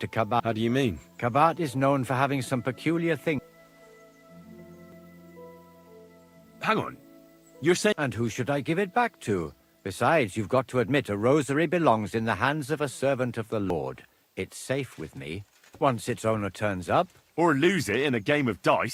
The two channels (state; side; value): identical; both; correlation 1.00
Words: to Kabat. How do you mean? Kabat is known for having some peculiar things. Hang on. You're saying... And who should I give it back to? Besides, you've got to admit a rosary belongs in the hands of a servant of the Lord. It's safe with me. Once its owner turns up... Or lose it in a game of